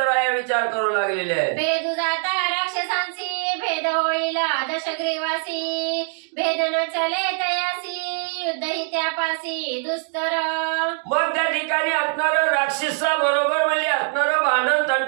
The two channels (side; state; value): left; silent; 58 dB below the other